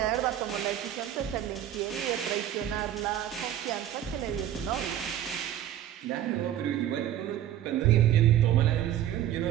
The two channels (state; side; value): quieter; left; 11.5 dB